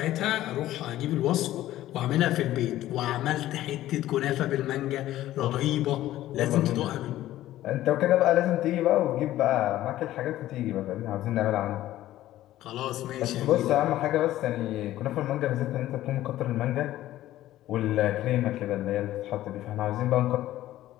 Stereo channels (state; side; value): quieter; right; 14.3 dB